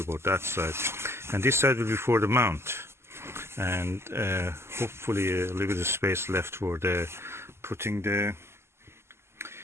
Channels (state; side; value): late; left; 0.12 ms